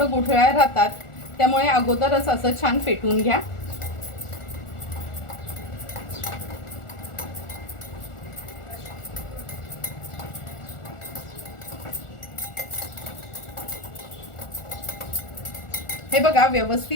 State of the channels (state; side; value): late; right; 1.4 ms